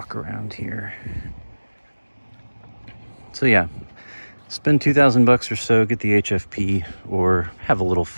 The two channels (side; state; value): both; inverted; correlation -1.00